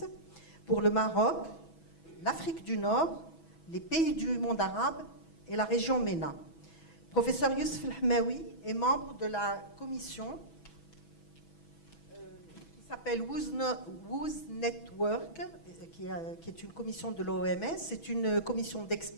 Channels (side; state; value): right; late; 6.1 ms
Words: pour le Maroc, l'Afrique du Nord, les pays du monde arabe et la région MENA. Professeur Youssef El-Hamaoui est membre de la commission s'appelle WOOS Network, qui est une commission de l'OMS. C'est une commission